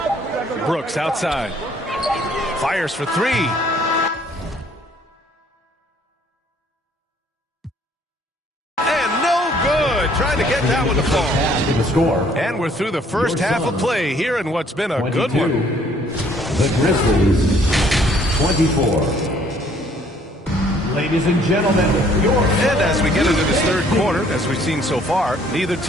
Brooks outside. Fires for 3. And no good. Trying to get that one to fall. The score. And we're through the first half of play here in what's been a 22. good one. The Grizzlies, 24. Ladies and gentlemen, And as we get into this third quarter, as we've seen so far, neither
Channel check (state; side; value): normal; both; correlation 0.61